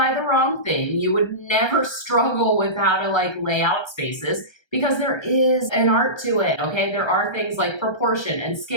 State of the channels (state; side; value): late; right; 1.3 ms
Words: the wrong thing. You would never struggle with how to lay out spaces, because there is an art to it, okay? There are things like proportion and